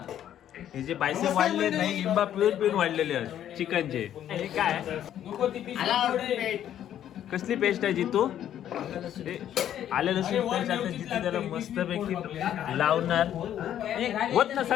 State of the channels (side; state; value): right; quieter; 10.8 dB